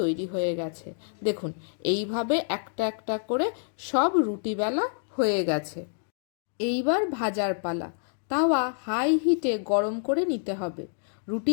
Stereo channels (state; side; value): silent; right; digital silence